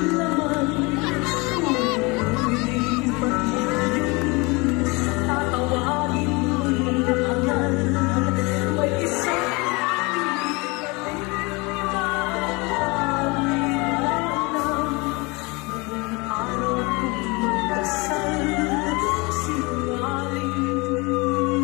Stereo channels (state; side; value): quieter; right; 26.6 dB